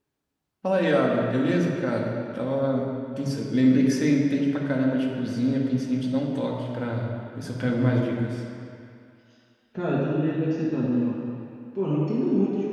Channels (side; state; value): both; identical; correlation 1.00